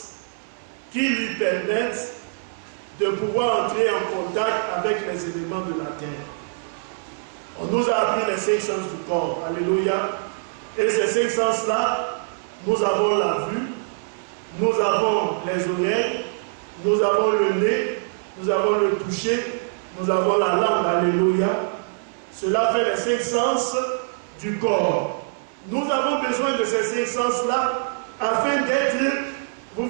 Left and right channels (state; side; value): silent; left; 63 dB below the other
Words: qui lui permettent de pouvoir entrer en contact avec les éléments de la terre. On nous a appris les 5 sens du corps. Alléluia. Et ces 5 sens-là, nous avons la vue, nous avons les oreilles, nous avons le nez, nous avons le toucher, nous avons la langue. Alléluia. Cela fait les 5 sens du corps. Nous avons besoin de ces 5 sens-là afin d'être, vous